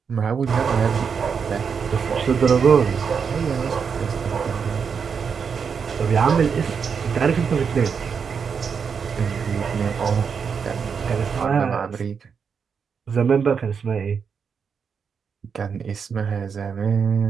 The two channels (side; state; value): left; quieter; 6.3 dB